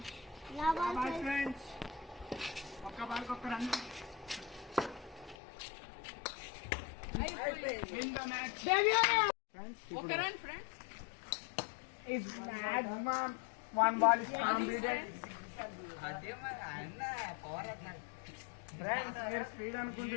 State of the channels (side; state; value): right; drops out; at 5.4 s